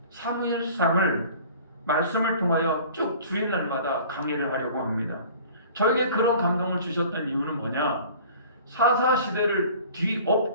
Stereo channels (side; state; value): both; inverted; correlation -0.46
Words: 사무엘상을 말씀을 통하여 쭉 주일날마다 강의를 하려고 합니다. 저에게 그런 감동을 주셨던 이유는 뭐냐? 사사시대를